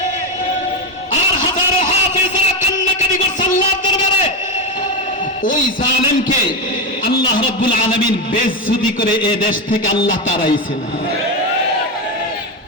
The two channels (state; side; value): normal; both; correlation 0.13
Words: আর হাজারো হাফেজরা কান্নাকাটি করছে আল্লাহর দরবারে। ওই জালেমকে আল্লাহ রাব্বুল আলামিন বেইজ্জতি করে এ দেশ থেকে আল্লাহ তাড়াইছেন।